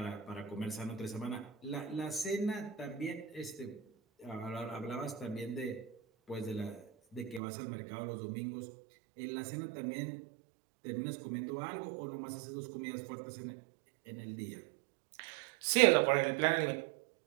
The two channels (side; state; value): left; drops out; at 7.4 s